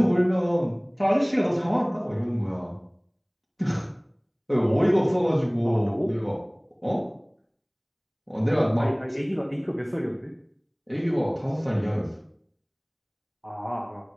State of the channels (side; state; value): both; identical; correlation 1.00